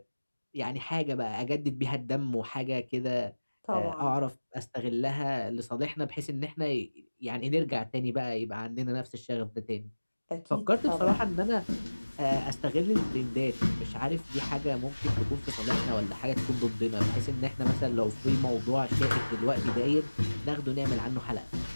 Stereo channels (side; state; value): both; inverted; correlation -1.00